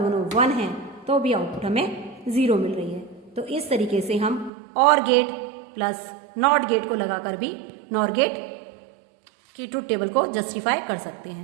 1 हैं तो भी आउटपुट हमें 0 मिल रही है। तो इस तरीके से हम और गेट प्लस नॉट गेट को लगाकर भी नॉर गेट की ट्रुथ टेबल को जस्टिफाई कर सकते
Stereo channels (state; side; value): drops out; left; at 4.5 s